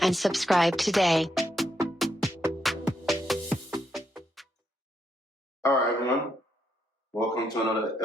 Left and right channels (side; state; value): both; normal; correlation 0.79